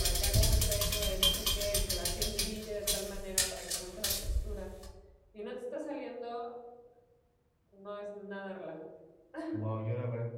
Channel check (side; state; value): both; identical; correlation 1.00